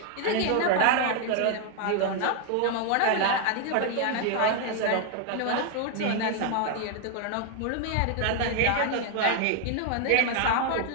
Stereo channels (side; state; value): both; different; correlation 0.00